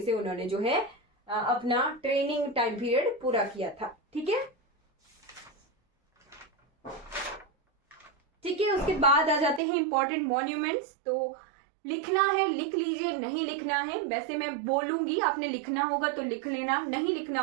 से उन्होंने जो है अपना ट्रेनिंग टाइम पीरियड पूरा किया था। ठीक है, ठीक है। उसके बाद आ जाते हैं इंपॉर्टेंट मॉन्यूमेंट्स। तो लिखना है लिख लीजिए, नहीं लिखना है वैसे मैं बोलूंगी, आपने लिखना होगा तो लिख लेना, नहीं लिखना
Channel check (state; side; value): drops out; left; at 9.6 s